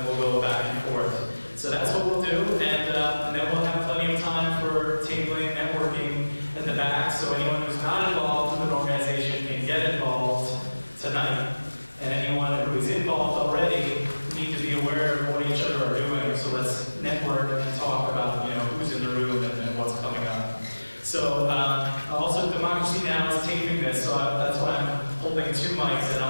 we'll go back and forth. So that's what we'll do, and then we'll have plenty of time for tabling, networking in the back, so anyone who's not involved with an organization can get involved tonight. And anyone who is involved already need to be aware of what each other are doing, so let's network and talk about who's in the room and what's coming up. So also Democracy Now! Is taping this, so that's why I'm holding 2 mics, and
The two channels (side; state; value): both; inverted; correlation -1.00